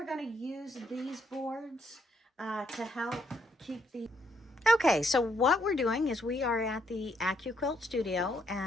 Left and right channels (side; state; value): both; normal; correlation 0.73